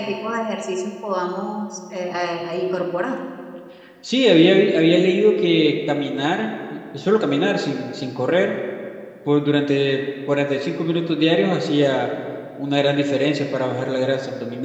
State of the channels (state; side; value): identical; both; correlation 1.00